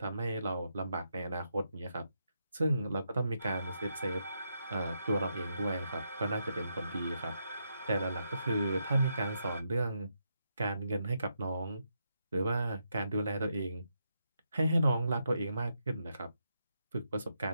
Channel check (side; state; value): both; inverted; correlation -0.81